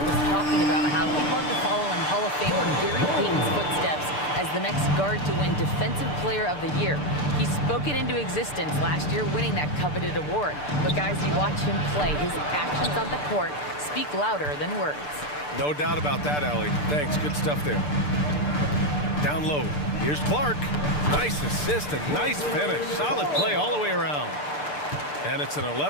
was talking about how he'd love to follow in Hall of Famer Gary Payton's footsteps as the next guard to win Defensive Player of the Year. He spoke it into existence last year, winning that coveted award. But guys, you watch him play, his actions on the court speak louder than words. No doubt about that, Allie. Thanks, good stuff there. Down low, here's Clark. Nice assist and nice finish. Solid play all the way around. And it's an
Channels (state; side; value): late; right; 6.8 ms